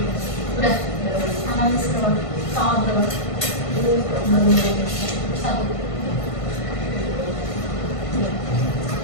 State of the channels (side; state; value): right; late; 1.5 ms